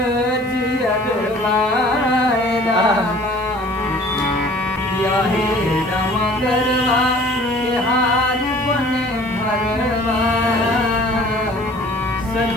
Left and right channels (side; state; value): right; noise; hiss, 28 dB below the sound